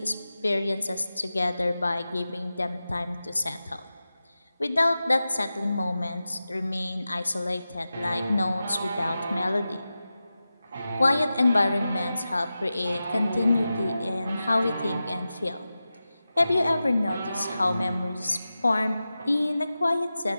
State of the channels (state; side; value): inverted; both; correlation -0.94